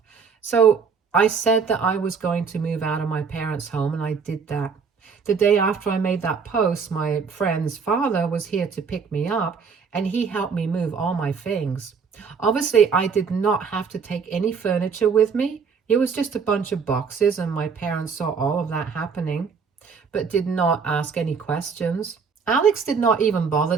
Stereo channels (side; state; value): left; quieter; 5.7 dB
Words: So, I said that I was going to move out of my parents' home, and I did that. The day after I made that post, my friend's father was here to pick me up, and he helped me move all my things. Obviously, I did not have to take any furniture with me. It was just a bunch of boxes, and my parents saw all of that happening, but did not ask any questions. Alex did not even